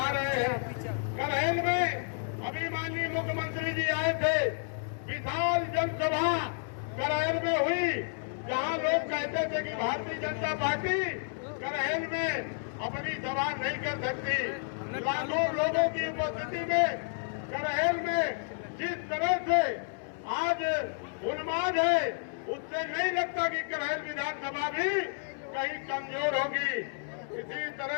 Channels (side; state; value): right; silent; 57 dB below the other